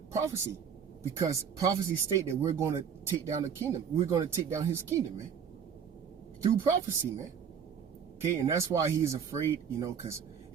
prophecy, because prophecy state that we're going to take down the kingdom. We're going to take down his kingdom, man, through prophecy, man. Okay, and that's why he's afraid, you know, because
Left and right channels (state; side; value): quieter; left; 7.3 dB